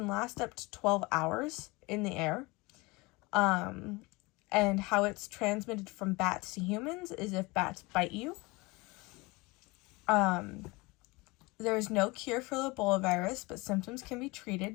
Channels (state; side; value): quieter; right; 24.2 dB